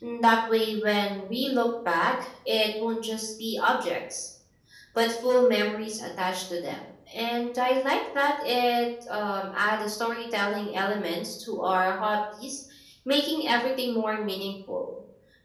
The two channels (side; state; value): both; identical; correlation 1.00